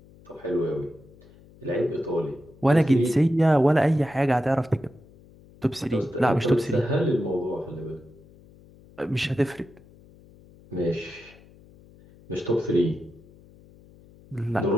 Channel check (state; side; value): noise; left; hum, 25 dB below the sound